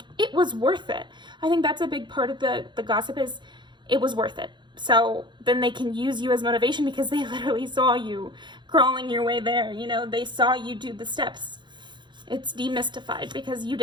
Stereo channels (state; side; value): late; left; 0.22 ms